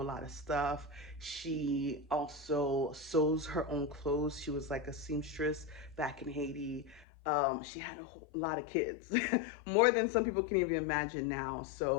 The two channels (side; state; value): right; drops out; at 7.1 s